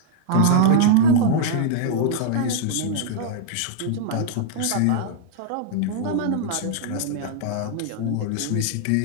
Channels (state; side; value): different; both; correlation -0.01